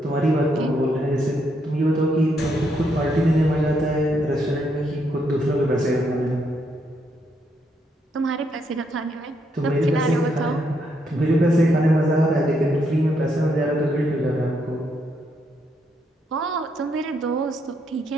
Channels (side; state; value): both; normal; correlation 0.76